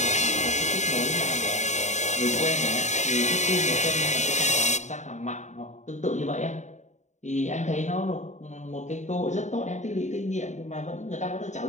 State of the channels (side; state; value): right; late; 0.34 ms